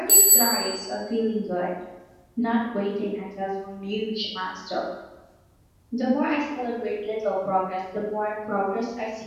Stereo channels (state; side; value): identical; both; correlation 1.00